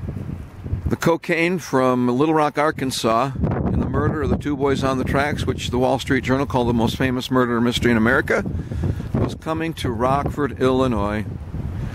the cocaine from Little Rock, Arkansas, in the murder of the two boys on the tracks, which the Wall Street Journal called the most famous murder mystery in America, was coming to Rockford, Illinois.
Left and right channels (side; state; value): both; identical; correlation 1.00